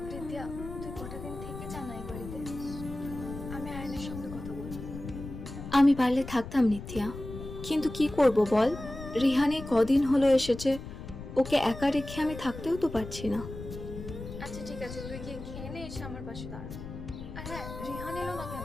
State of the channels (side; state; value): left; noise; rumble, 10 dB below the sound